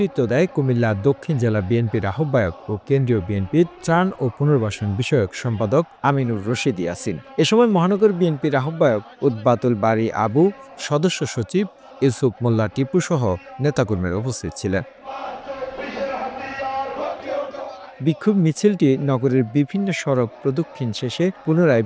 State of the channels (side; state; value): both; identical; correlation 1.00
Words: দেয় কুমিল্লা দক্ষিণ জেলা বিএনপির আহ্বায়ক ও কেন্দ্রীয় বিএনপির ত্রাণ ও পুনর্বাসন বিষয়ক সম্পাদক আমিনুর রশিদ ইয়াসিন। এ সময় মহানগর বিএনপির আহ্বায়ক উদ্বাতুল বারী আবু, সদস্য সচিব ইউসুফ মোল্লা টিপু সহ নেতাকর্মীরা উপস্থিত ছিলেন। বিক্ষোভ মিছিলটি নগরের বিভিন্ন সড়ক প্রদক্ষিণ শেষে পুনরায়